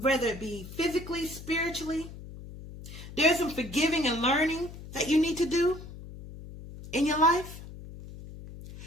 it be physically, spiritually. There's some forgiving and learning that you need to do in your life.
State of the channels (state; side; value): noise; left; hum, 14 dB below the sound